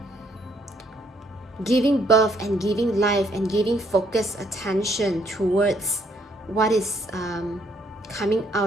giving birth and giving life and giving focused attention towards what is coming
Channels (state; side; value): normal; both; correlation 0.69